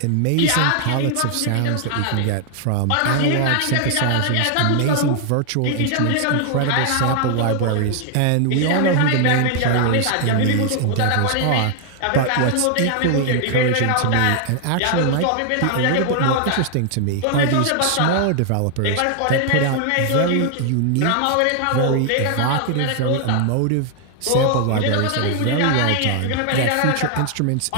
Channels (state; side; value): different; both; correlation 0.00